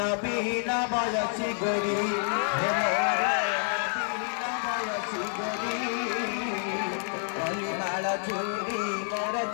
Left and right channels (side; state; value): right; silent; 56 dB below the other